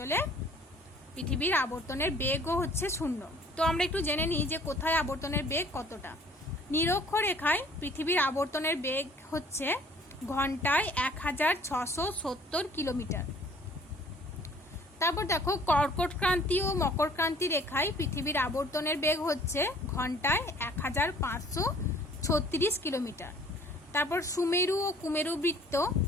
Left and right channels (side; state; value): both; normal; correlation 0.55